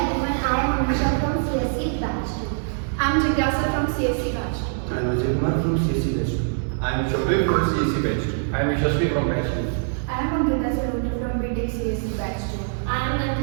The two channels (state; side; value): silent; left; 58 dB below the other